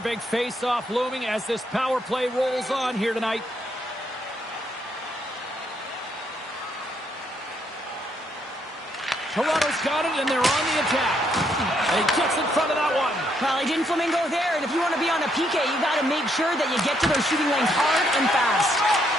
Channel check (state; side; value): normal; both; correlation 0.73